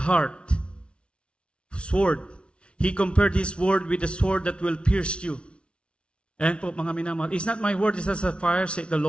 heart. Sword. He compared His word with a sword that will pierce you. Ayan po, mga minamahal. Is not my word is as a fire, said the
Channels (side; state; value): right; late; 0.058 ms